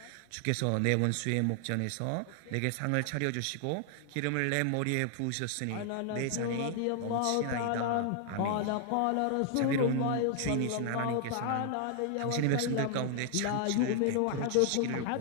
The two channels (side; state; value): both; different; correlation 0.00